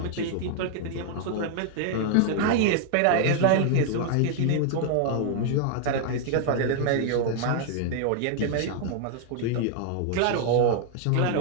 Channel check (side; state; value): both; different; correlation 0.00